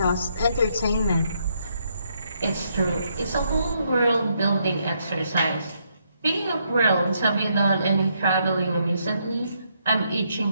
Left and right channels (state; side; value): inverted; both; correlation -0.75